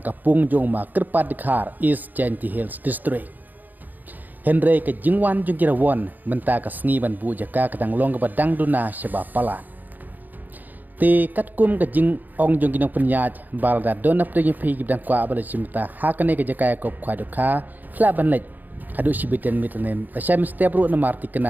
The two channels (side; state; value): left; late; 0.085 ms